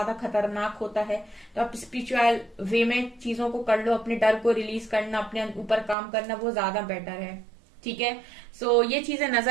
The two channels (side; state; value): left; drops out; at 6.0 s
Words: खतरनाक होता है। तो आप स्पिरिचुअल वे में चीजों को कर लो, अपने डर को रिलीज करना, अपने ऊपर काम करना, वो ज्यादा बेटर है, ठीक है। सो ये चीजें